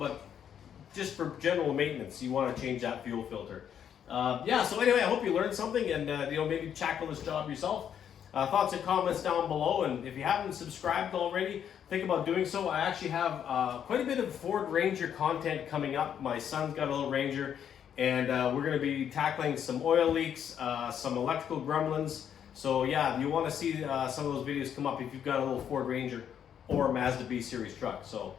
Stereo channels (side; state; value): right; quieter; 8.9 dB